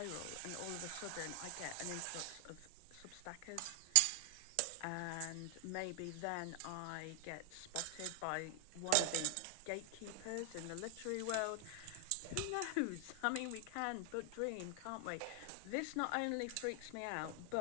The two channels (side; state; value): both; different; correlation 0.00